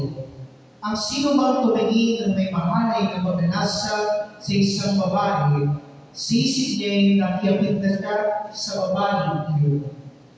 ang sino mang tumingin ng may mahalay na pagnanasa sa isang babae, sisig niya'y nakiapit na siya sa babae iyon.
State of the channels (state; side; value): identical; both; correlation 1.00